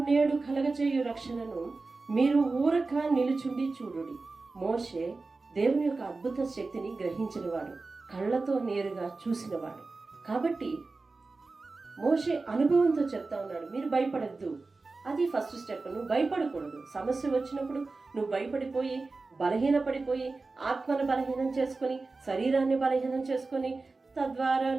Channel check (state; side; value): quieter; left; 3.7 dB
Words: నేడు కలగజేయు రక్షణను మీరు ఊరక నిలుచుండి చూడుడి. మోషే దేవుని యొక్క అద్భుత శక్తిని గ్రహించినవాడు, కళ్ళతో నేరుగా చూసినవాడు. కాబట్టి మోషే అనుభవంతో చెప్తా ఉన్నాడు, మీరు భయపడద్దు. అది ఫస్ట్ స్టెప్. నువ్వు భయపడకూడదు. సమస్య వచ్చినప్పుడు నువ్వు భయపడిపోయి బలహీనపడిపోయి ఆత్మను బలహీనం చేసుకొని శరీరాన్ని బలహీనం చేసుకొని తద్వారా